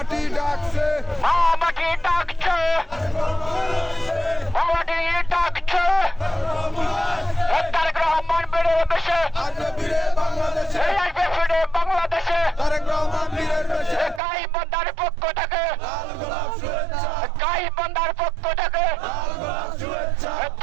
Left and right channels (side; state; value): left; drops out; at 14.2 s